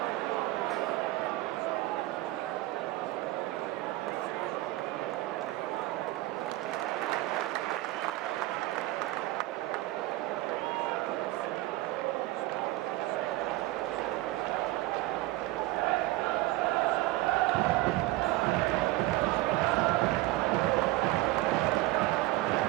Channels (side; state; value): left; quieter; 18.0 dB